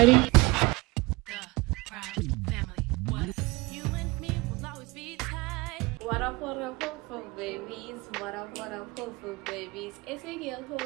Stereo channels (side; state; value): left; quieter; 23.3 dB